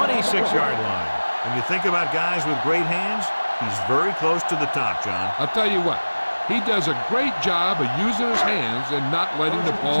line. When you think about guys with great hands, he's very close to the top, John. I'll tell you what, he does a great job of using his hands and not letting the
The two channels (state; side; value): inverted; both; correlation -1.00